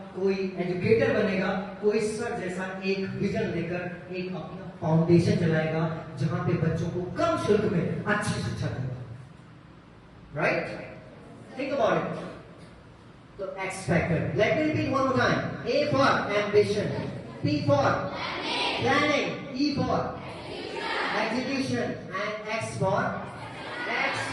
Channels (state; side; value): identical; both; correlation 1.00